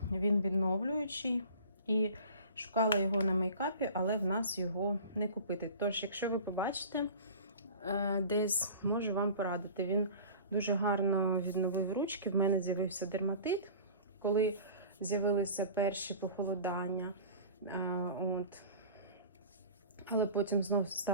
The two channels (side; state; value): both; inverted; correlation -0.40